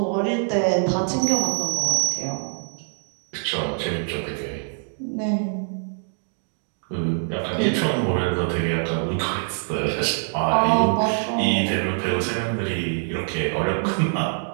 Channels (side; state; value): left; silent; 63 dB below the other